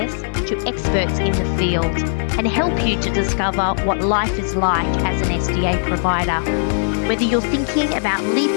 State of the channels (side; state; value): right; silent; digital silence